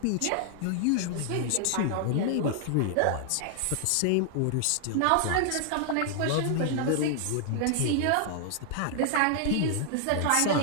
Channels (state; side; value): different; both; correlation 0.00